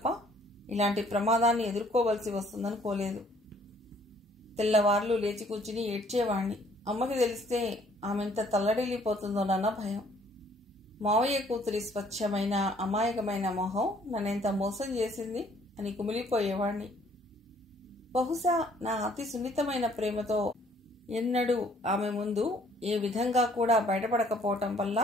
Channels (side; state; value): both; normal; correlation 0.61